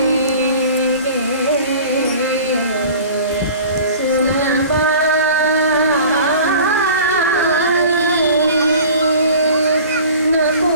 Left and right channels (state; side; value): inverted; both; correlation -0.43